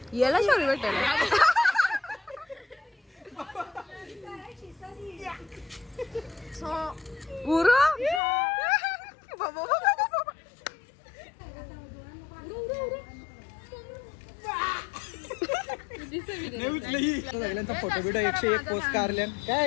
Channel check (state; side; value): drops out; right; at 8.2 s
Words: याला शोरी भेटेल. गुरु सगळ्यांचा फोटो बिटो 101 पोस्ट काढल्या.